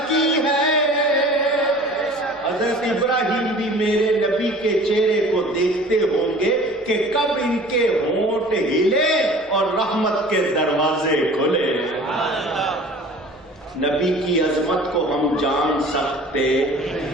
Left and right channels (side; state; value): both; normal; correlation 0.45